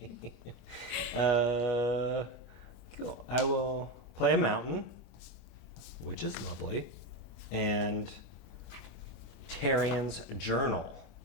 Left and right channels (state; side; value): normal; both; correlation 0.14